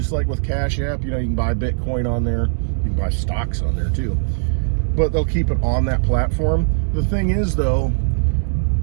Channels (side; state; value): left; silent; 66 dB below the other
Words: like with CashApp. You know, you can buy Bitcoin on there. You can buy stocks on there too. But they'll keep it on that platform. The thing is, though,